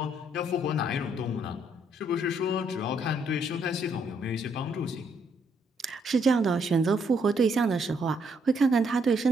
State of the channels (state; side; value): normal; both; correlation 0.72